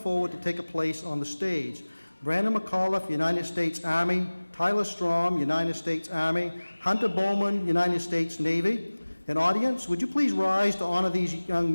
to take a place on the stage. Brandon McAuliffe, United States Army; Tyler Strom, United States Army; Hunter Bowman, United States Navy. And audience, would you please rise to honor these young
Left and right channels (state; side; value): inverted; both; correlation -1.00